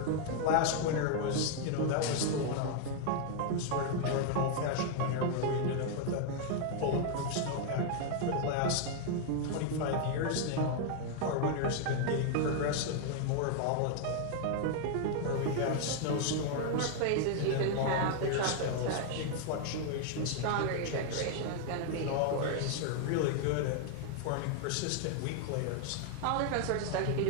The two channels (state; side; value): different; both; correlation 0.00